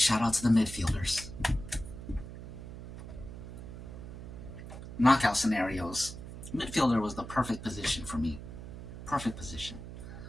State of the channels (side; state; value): right; noise; hum, 11 dB below the sound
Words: out to the midfielders. Knockout scenarios. Midfielder was the perfect position for me. Perfect position.